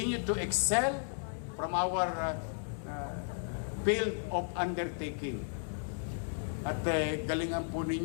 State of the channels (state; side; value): silent; right; digital silence